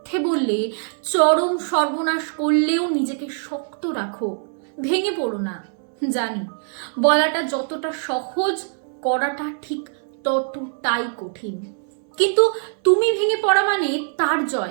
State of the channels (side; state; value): left; silent; 64 dB below the other